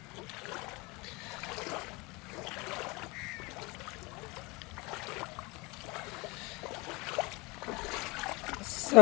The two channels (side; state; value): right; quieter; 25.3 dB